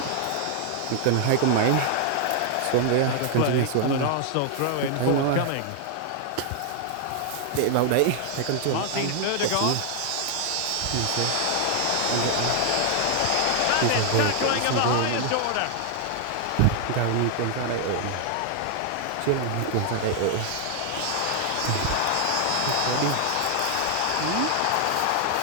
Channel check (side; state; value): both; different; correlation 0.00